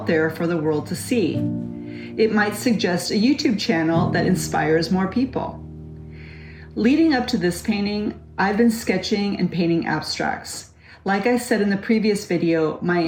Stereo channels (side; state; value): both; identical; correlation 1.00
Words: there for the world to see. It might suggest a YouTube channel that inspires more people. Leading up to this painting, I've been sketching and painting abstracts. Like I said in the previous video, my